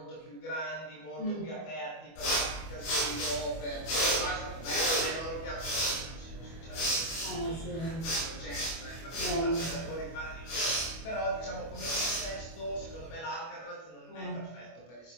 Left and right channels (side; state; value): right; late; 25 ms